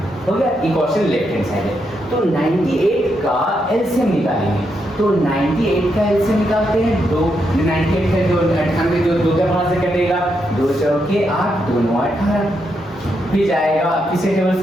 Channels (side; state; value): both; normal; correlation 0.81